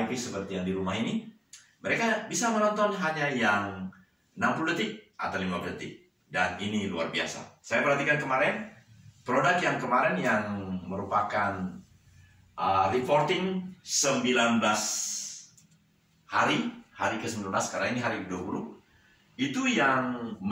seperti yang di rumah ini, mereka bisa menonton hanya yang 60 detik atau 15 detik. Dan ini luar biasa. Saya perhatikan kemarin, produk yang kemarin yang merupakan reporting 19 hari ke-19, karena ini hari ke-20. Itu yang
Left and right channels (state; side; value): identical; both; correlation 1.00